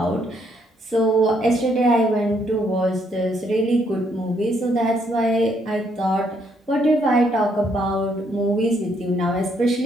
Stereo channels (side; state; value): both; normal; correlation 0.71